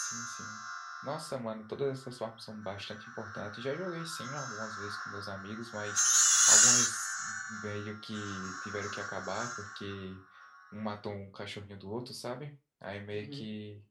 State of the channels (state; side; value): identical; both; correlation 1.00